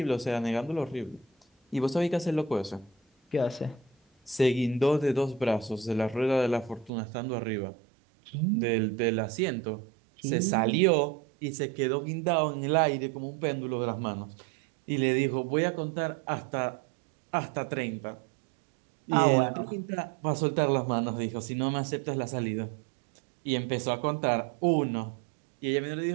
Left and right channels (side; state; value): left; drops out; at 6.9 s